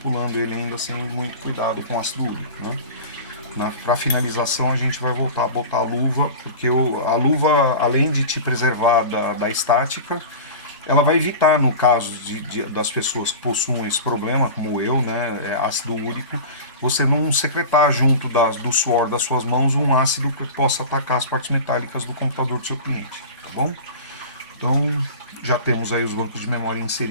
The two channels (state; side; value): inverted; both; correlation -0.33